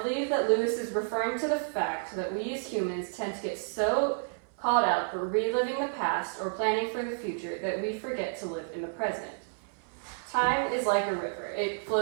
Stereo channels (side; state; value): left; silent; 57 dB below the other